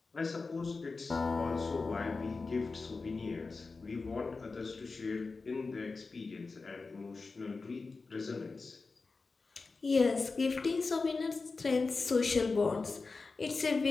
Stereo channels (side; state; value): right; quieter; 4.1 dB